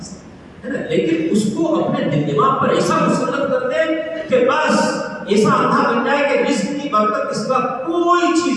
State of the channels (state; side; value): identical; both; correlation 1.00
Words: سے، ہے نا، لیکن اس کو اپنے دل دماغ پر ایسا مسلط کر دے کہ بس ایسا اندھا بن جائے کہ رزق کی برکت اس کا کوئی